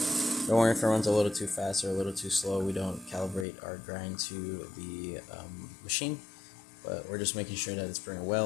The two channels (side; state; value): right; drops out; at 3.5 s